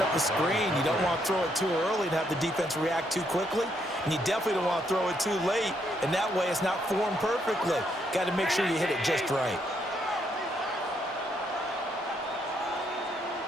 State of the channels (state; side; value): normal; both; correlation 0.74